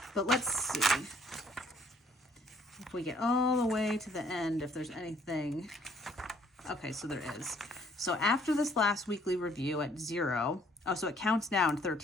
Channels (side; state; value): both; normal; correlation 0.62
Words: But let's see if we get all the way to the end, if there's anything. Okay, so there is. So after this last weekly review at 0, oh, so it counts down